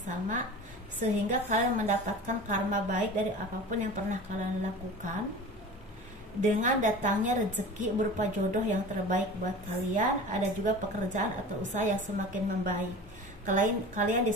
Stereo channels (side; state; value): both; normal; correlation 0.36